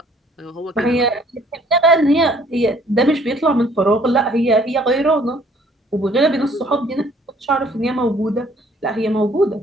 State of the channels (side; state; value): both; normal; correlation 0.59